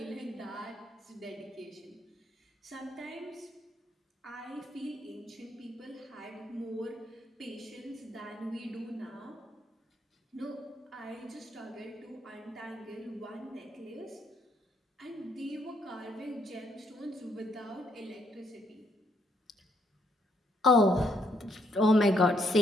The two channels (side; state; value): both; normal; correlation 0.72